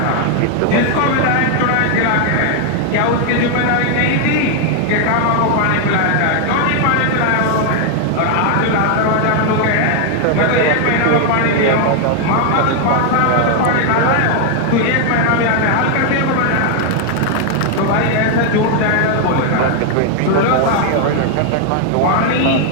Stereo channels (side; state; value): both; different; correlation 0.00